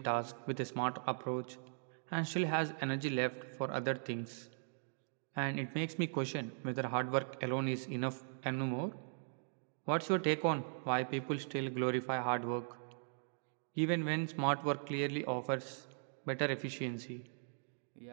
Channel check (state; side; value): silent; left; digital silence